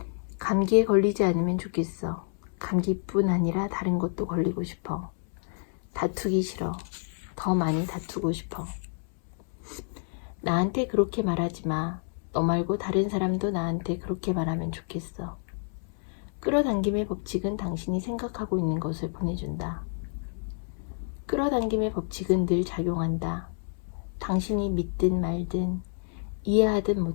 감기에 걸리지 않으면 좋겠어. 감기뿐 아니라 다른 것도 걸리고 싶어. 다투기 싫어. 더 많이 다투고 싶어. 나한테 그렇게 말하지 마. 너 말고 다른 사람도 나한테 그렇게 말하면 좋겠어. 끌어당김의 법칙은 당신이 생각하고 있는 것을 보내준다. 끌어당김의 법칙은 늘 작용한다. 당신이 믿든 말든 이해하든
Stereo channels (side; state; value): right; silent; 59 dB below the other